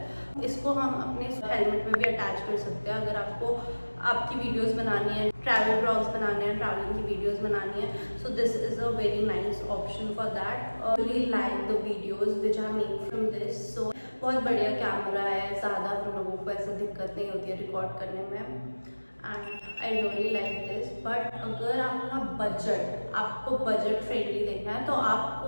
इसको हम अपने हेलमेट में भी अटैच कर सकते हैं अगर आपको आपकी वीडियोस बनानी है, ट्रैवल ब्लॉग्स बनाने हैं, ट्रैवलिंग की वीडियोस बनानी है। So this is a very nice option for that. Really like the videos which I make from this. So बहुत बढ़िया कैमरा है, ज़्यादा हम लोगों को ऐसा दिक्कत नहीं होती है रिकॉर्ड करने में। And I really like this. But अगर आपको बजट फ्रेंडली देखना है, तो आप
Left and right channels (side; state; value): both; inverted; correlation -1.00